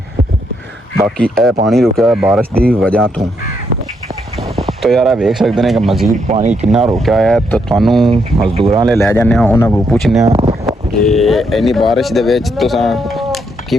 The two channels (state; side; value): normal; both; correlation 0.77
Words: बाकी यह पानी रुका है बारिश की वजह तो यार वेख सकते हैं कि मजीद पानी कितना रुका है। तो थानू मजदूरों ले लै जाने उन्होंने पूछने कि इन्नी बारिश के